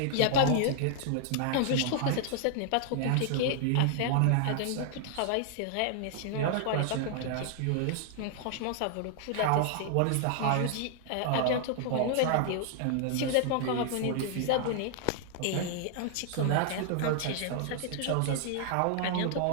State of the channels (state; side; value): different; both; correlation -0.01